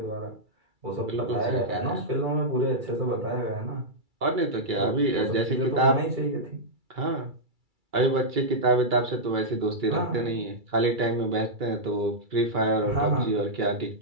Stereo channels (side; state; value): left; late; 2.3 ms